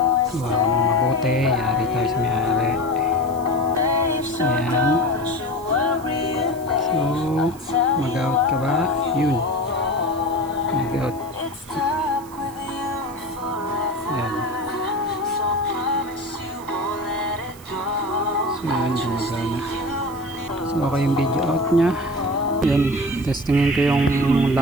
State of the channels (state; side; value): noise; right; hiss, 22 dB below the sound